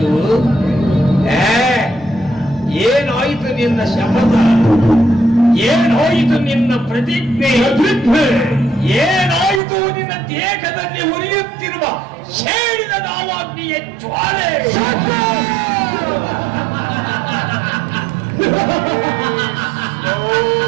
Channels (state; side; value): drops out; left; at 9.6 s